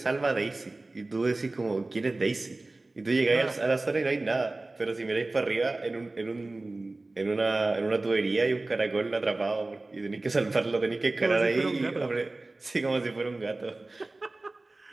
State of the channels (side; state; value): left; quieter; 3.0 dB